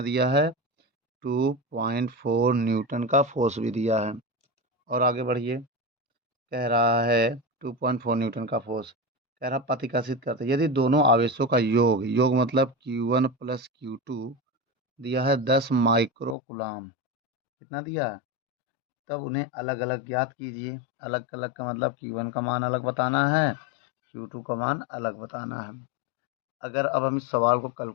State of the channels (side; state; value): right; drops out; at 16.4 s